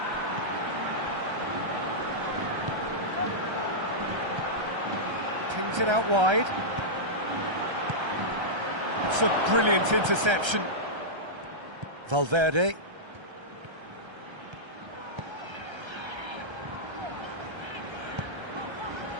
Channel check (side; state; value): left; late; 1.3 ms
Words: Pings it out wide. It's a brilliant interception. Valverde.